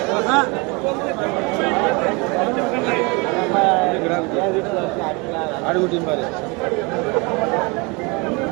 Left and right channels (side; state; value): left; quieter; 28.3 dB